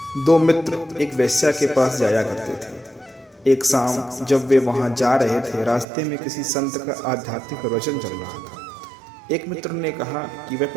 दो मित्र एक वेश्या के पास जाया करते थे। एक शाम जब वे वहां जा रहे थे, रास्ते में किसी संत का आध्यात्मिक प्रवचन चल रहा था। एक मित्र ने कहा कि वह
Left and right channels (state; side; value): drops out; left; at 5.9 s